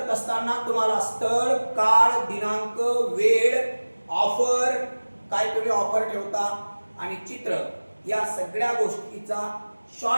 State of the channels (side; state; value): both; inverted; correlation -1.00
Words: असताना तुम्हाला स्थळ, काळ, दिनांक, वेळ, ऑफर, काय तुम्ही ऑफर ठेवता आणि चित्र, या सगळ्या गोष्टीचा